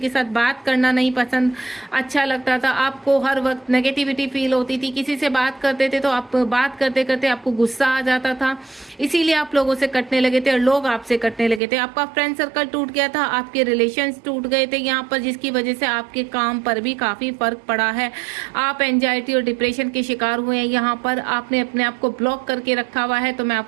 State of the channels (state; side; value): drops out; left; at 11.6 s